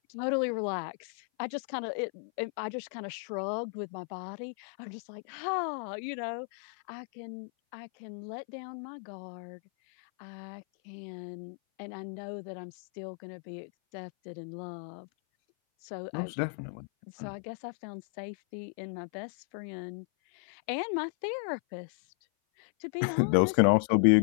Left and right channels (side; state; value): right; silent; 55 dB below the other